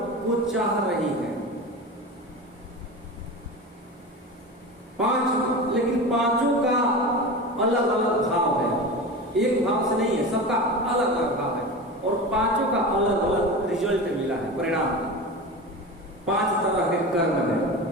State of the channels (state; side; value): normal; both; correlation 0.28